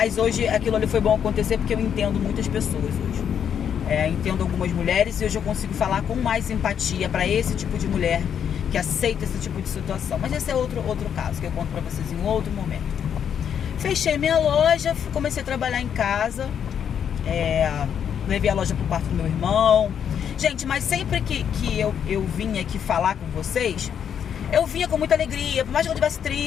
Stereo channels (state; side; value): quieter; right; 8.3 dB